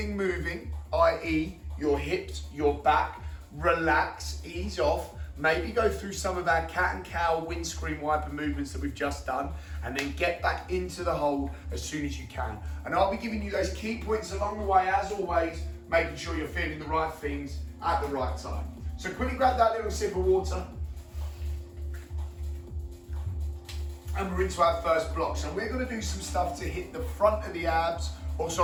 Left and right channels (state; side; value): identical; both; correlation 1.00